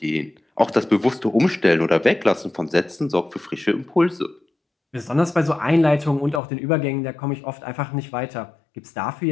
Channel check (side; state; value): right; drops out; at 6.4 s